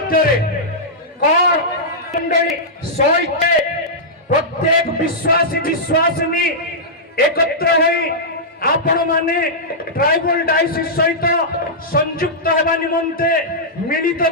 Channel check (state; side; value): normal; both; correlation -0.12